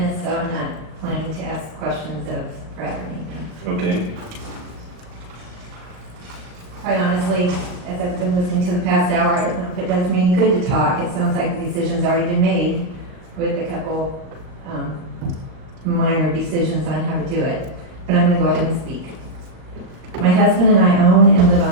so I'm not planning to ask questions of Brad or Nathan. Okay, Quite honestly, as I've been listening to the past hour, I don't know if it does me any good to talk. It sounds like the decision's already been made with a couple, minor decisions on how to do it. But I'm gonna go ahead and speak. My husband and I own and live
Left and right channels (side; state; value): left; late; 38 ms